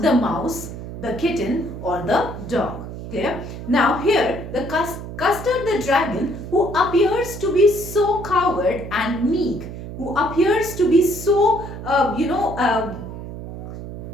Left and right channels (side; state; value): right; noise; hum, 10 dB below the sound